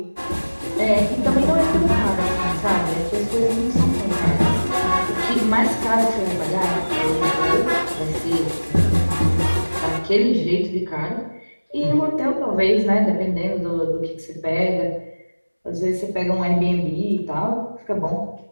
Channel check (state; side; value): inverted; both; correlation -1.00